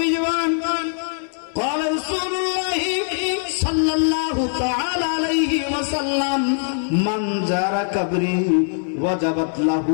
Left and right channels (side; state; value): right; silent; digital silence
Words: জীবন قال رسول الله صلى الله تعالى عليه وسلم من زار قبري وجبت له